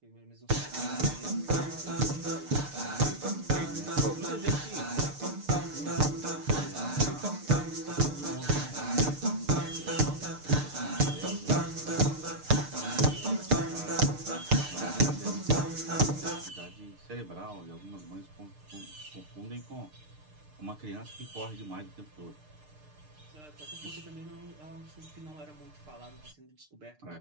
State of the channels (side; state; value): left; late; 6.6 ms